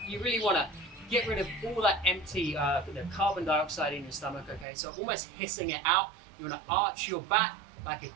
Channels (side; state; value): left; drops out; at 4.7 s